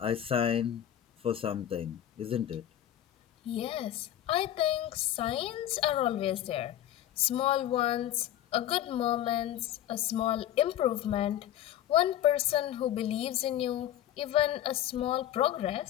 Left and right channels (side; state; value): right; quieter; 11.8 dB